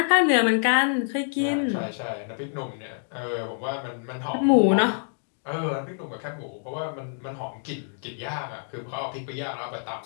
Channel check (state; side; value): silent; right; 61 dB below the other